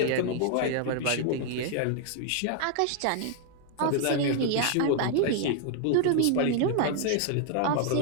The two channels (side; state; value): both; different; correlation 0.00